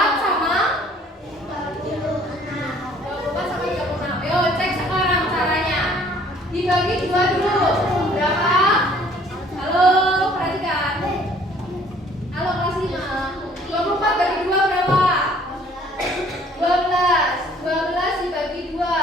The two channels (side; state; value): both; normal; correlation 0.57